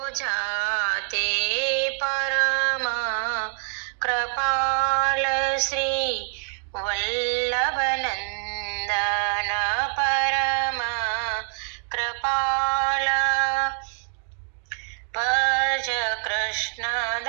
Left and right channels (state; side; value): silent; left; 62 dB below the other